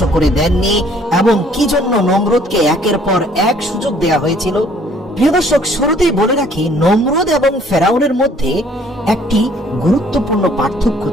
করে দেননি এবং কি জন্য নমরুদকে একের পর এক সুযোগ দেয়া হয়েছিল। প্রিয় দর্শক, শুরুতেই বলে রাখি, নমরুদ এবং ফেরাউনের মধ্যে একটি গুরুত্বপূর্ণ পার্থক্য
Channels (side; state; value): both; normal; correlation 0.59